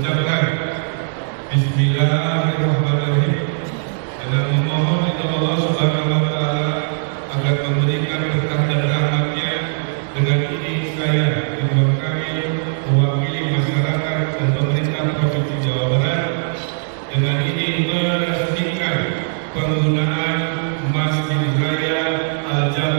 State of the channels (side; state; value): left; silent; digital silence